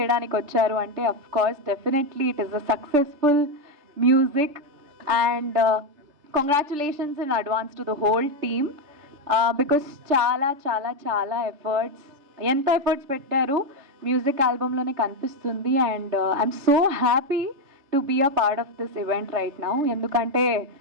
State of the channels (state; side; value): late; left; 3.4 ms